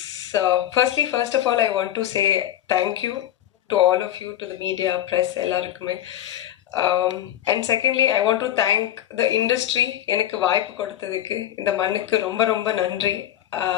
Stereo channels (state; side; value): quieter; right; 12.2 dB